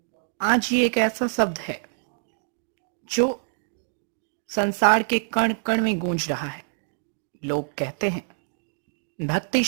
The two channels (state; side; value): silent; left; digital silence